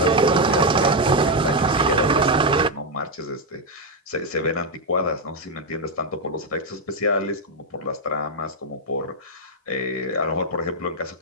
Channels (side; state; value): both; normal; correlation 0.03